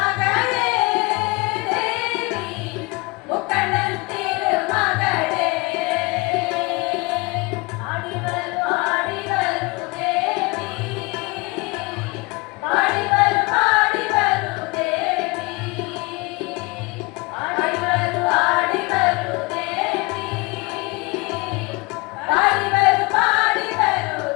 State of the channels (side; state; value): right; quieter; 26.0 dB